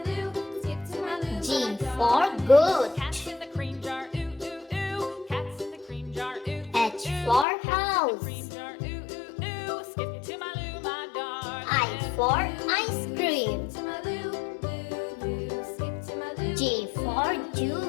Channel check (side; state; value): right; drops out; at 7.5 s